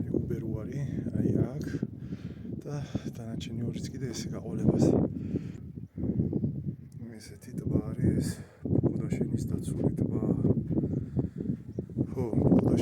უბერუარი, აი აქ და დანარჩენი ორიც კიდე ესე გაყოლებას. ესეთი ტბა არის ეს ბუღდაშენის დაცული ტბა. ხო,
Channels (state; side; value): identical; both; correlation 1.00